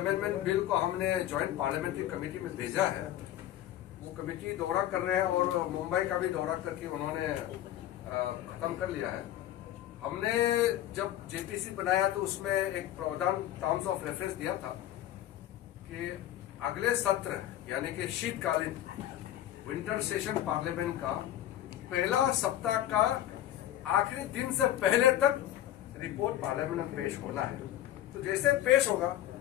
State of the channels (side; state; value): right; quieter; 12.8 dB